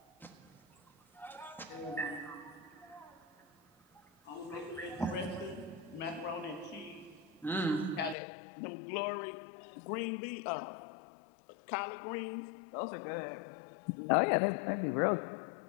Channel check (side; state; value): right; drops out; at 8.2 s